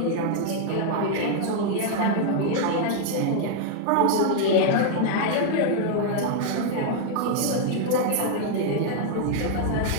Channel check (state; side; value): different; both; correlation 0.00